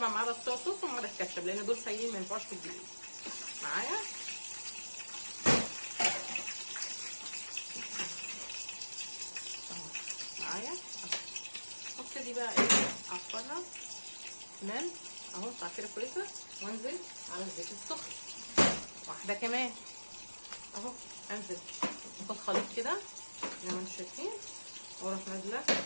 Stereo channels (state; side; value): inverted; both; correlation -1.00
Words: ما عدا الصويا صوص وما عدا الكاتشب لان دول سايلين ما ينفعوش في الدقيق معايا. اهو معايا. ابتدي بقى ايه اعفرها تمام اهو تعفيره كويسه، وانزل على الزيت السخن واحده كمان اهو. انزل اخد خليط كده زي ما انتم شايفين، واروح نازله